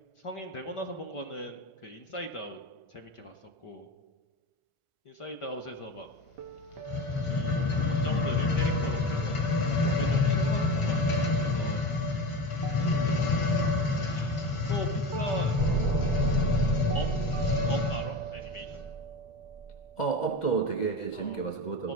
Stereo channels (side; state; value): right; late; 1.4 ms